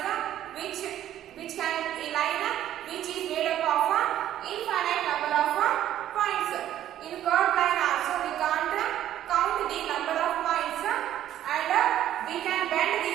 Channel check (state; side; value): quieter; left; 11.9 dB